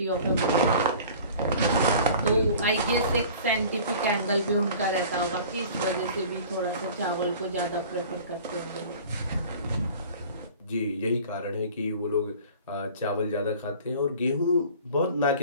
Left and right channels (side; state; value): both; inverted; correlation -0.44